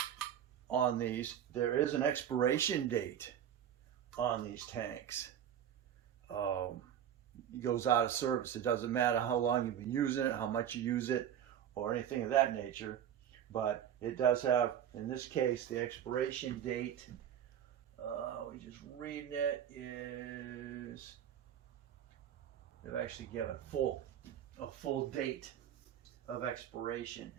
on these, there is an expiration date on these tanks. It goes out of service. It doesn't matter how long you've been using it, how much you use it, or anything of that nature. But it does have, in this case, the expiration date. We just reading it is, they've actually given a full date of expiration.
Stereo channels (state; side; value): quieter; left; 9.8 dB